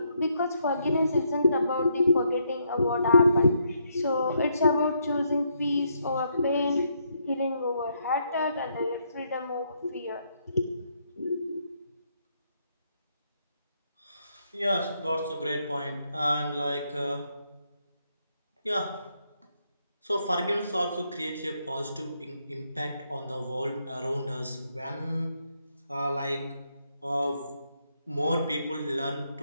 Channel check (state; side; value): inverted; both; correlation -0.75